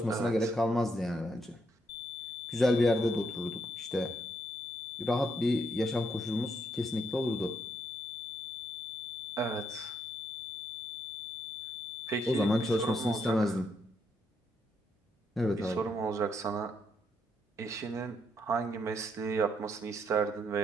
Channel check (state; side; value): normal; both; correlation 0.76